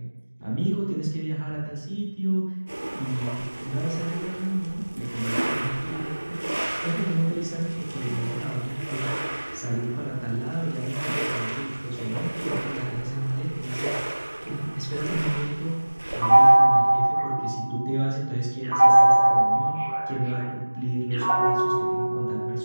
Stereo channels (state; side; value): inverted; both; correlation -1.00